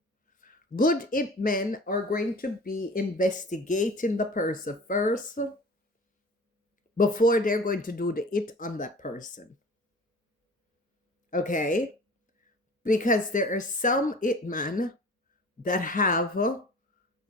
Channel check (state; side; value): normal; both; correlation 0.43